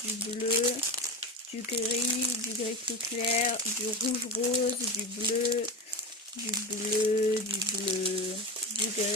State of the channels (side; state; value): both; normal; correlation 0.23